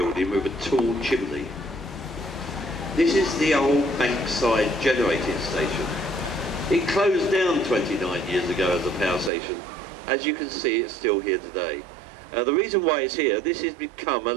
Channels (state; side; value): drops out; left; at 9.3 s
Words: with a tall chimney. This is the old Bankside generating station. It closed down 29 years ago as a power station. As you can see, it's still here today. The reason why it's here, this has become a